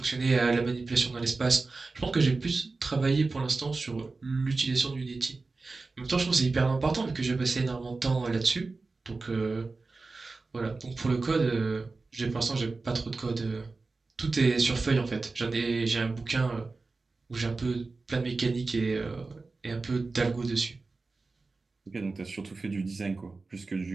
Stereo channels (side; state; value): left; quieter; 3.8 dB